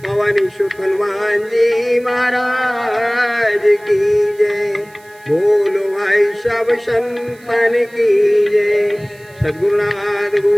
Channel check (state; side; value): noise; right; hiss, 28 dB below the sound